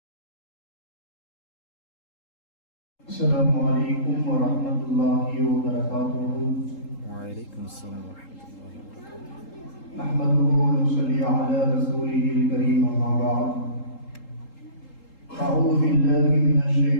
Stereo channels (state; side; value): late; right; 3.8 ms